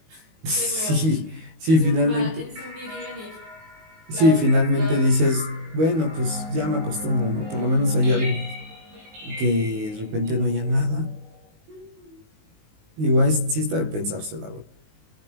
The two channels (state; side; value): late; left; 19 ms